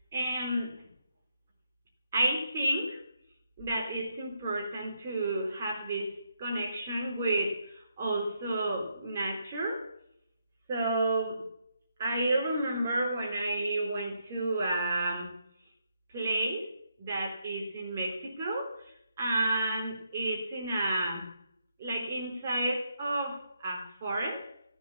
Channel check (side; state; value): both; inverted; correlation -0.78